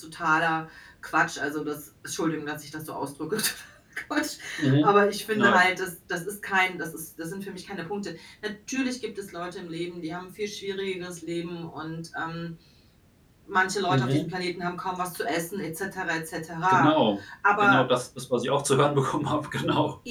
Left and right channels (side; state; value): both; identical; correlation 1.00